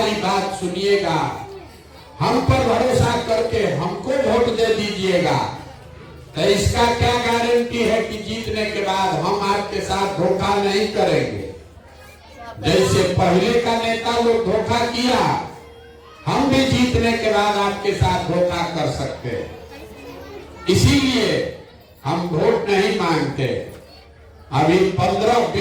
बात सुनिएगा, हम पर भरोसा करके हमको वोट दे दीजिएगा। तो इसका क्या गारंटी है कि जीतने के बाद हम आपके साथ धोखा नहीं करेंगे? जैसे पहले का नेता लोग धोखा किया, हम भी जीतने के बाद आपके साथ धोखा कर सकते हैं। इसीलिए हम वोट नहीं मांगते। अभी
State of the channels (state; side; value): identical; both; correlation 1.00